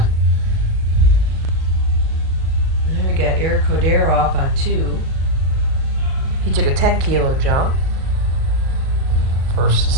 And then we got Eric Cordero up on 2. He took a 10 kilo jump. First to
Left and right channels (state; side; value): late; left; 38 ms